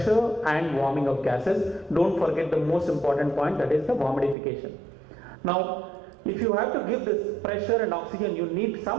and warming of gases. Don't forget the most important point, that is the humidification. Now, if you have to give this pressure and oxygen, you need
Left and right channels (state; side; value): drops out; left; at 4.4 s